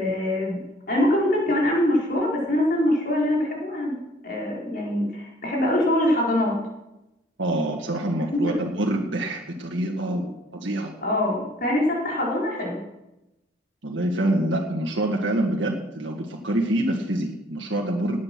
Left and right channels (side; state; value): both; normal; correlation 0.59